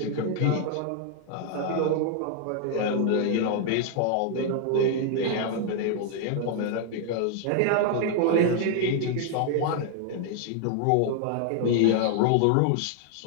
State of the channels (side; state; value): both; different; correlation 0.00